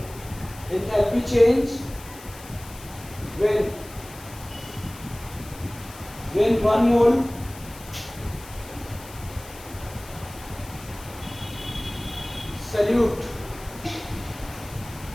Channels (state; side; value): noise; left; hiss, 18 dB below the sound